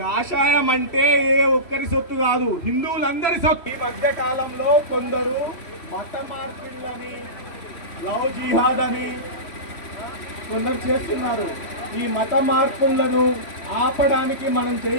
అంటే ఏ ఒక్కరి సొత్తు కాదు, హిందువులందరి సొత్తు. ఈ మధ్య కాలంలో కొందరు మత మార్పిళ్ళని, లవ్ జిహాద్ అని కొందరు చేస్తున్నారు. ఈ మత మార్పులను ఆపడానికి మనం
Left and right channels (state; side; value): late; right; 3.1 ms